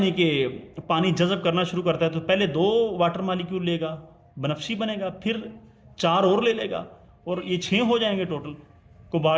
कि पानी जज़ब करना शुरू करता है तो पहले 2 वाटर मालिक्यूल लेगा, बनफशी बनेगा, फिर 4 और ले लेगा और ये 6 हो जाएंगे टोटल।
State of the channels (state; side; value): identical; both; correlation 1.00